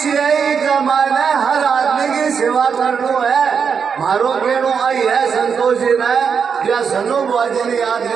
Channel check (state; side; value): quieter; left; 6.4 dB